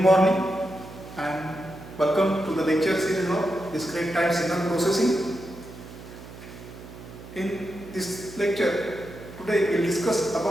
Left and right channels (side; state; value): right; noise; hum, 15 dB below the sound